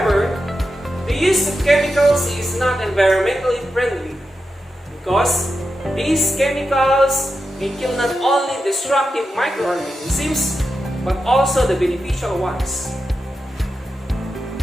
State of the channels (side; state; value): both; normal; correlation 0.89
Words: the use of chemicals is not environmentally friendly because these chemicals may kill not only destructive microorganisms but also the beneficial ones.